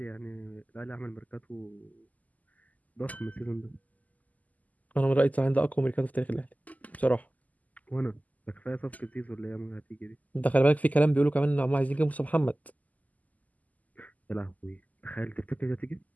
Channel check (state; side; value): late; right; 0.077 ms